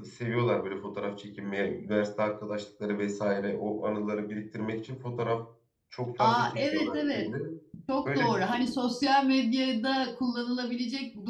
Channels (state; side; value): identical; both; correlation 1.00